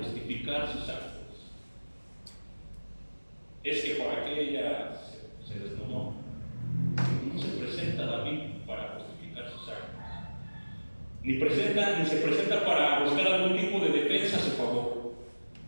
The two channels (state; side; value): inverted; both; correlation -1.00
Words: sus actos. Es que por aquella se desnudó. No se presenta David para justificar sus actos. Ni se presenta para buscar algún tipo de defensa a su favor.